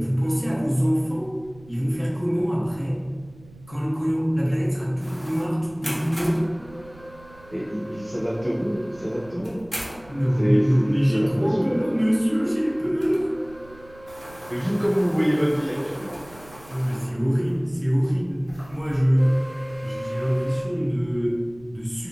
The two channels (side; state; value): right; noise; rumble, 23 dB below the sound